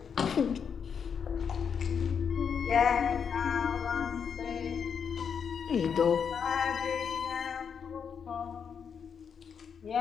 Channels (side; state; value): right; quieter; 6.9 dB